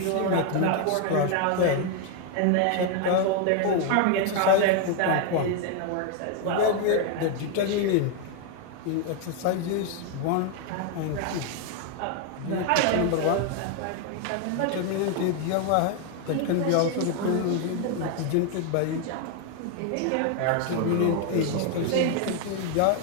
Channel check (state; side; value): different; both; correlation 0.01